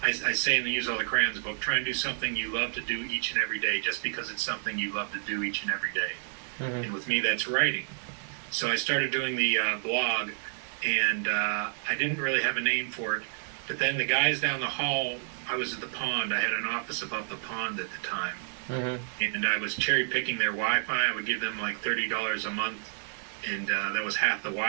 I say in the Use All the Crayons book, try and do something you love to do each and every day, just because it's something you love to do each and every day. Mm-hmm. And with me, that's writing. So I started doing the blog, and I didn't really have a name for it. But then the guys down the hall, I was at the pond. I had an office above the pond at the time. And I was cherry picking their Wi-Fi. I would give them like $30 a month, and that was half the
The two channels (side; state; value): left; silent; digital silence